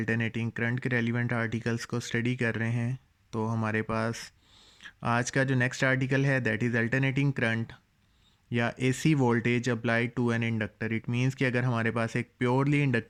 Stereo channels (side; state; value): both; identical; correlation 1.00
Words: करंट के रेलिवेंट आर्टिकल्स को स्टडी कर रहे हैं, तो हमारे पास आज का जो नेक्स्ट आर्टिकल है दैट इज़ अल्टरनेटिंग करंट या AC voltage applied to an inductor. It means कि अगर हमारे पास एक प्योरली